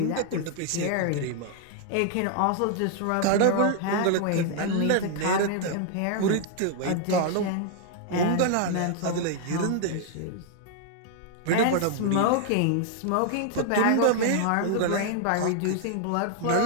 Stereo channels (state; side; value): different; both; correlation 0.00